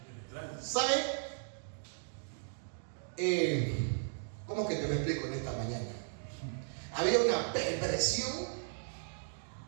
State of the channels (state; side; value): silent; left; digital silence